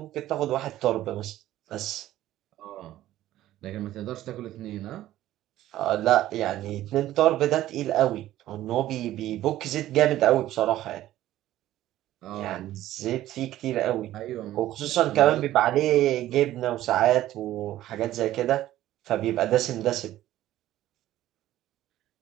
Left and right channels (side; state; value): left; quieter; 14.1 dB